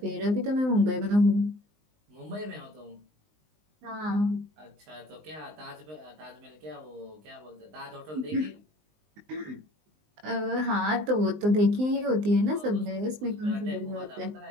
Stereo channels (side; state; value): left; late; 19 ms